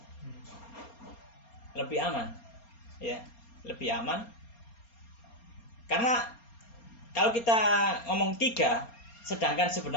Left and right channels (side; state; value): right; late; 4.3 ms